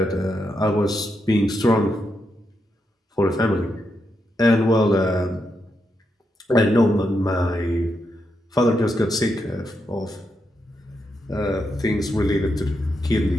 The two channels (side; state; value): both; normal; correlation 0.83